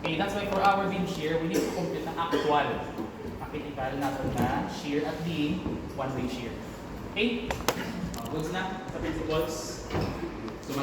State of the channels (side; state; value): both; identical; correlation 1.00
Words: that's why for our beam shear, we need to compute ang actual critical natin na shear at the one-way shear. Okay? Goods na sa principles.